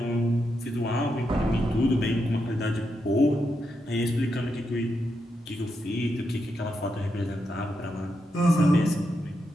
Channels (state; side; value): normal; both; correlation 0.84